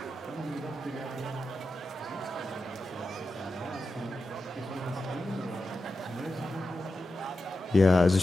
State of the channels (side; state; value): both; normal; correlation 0.91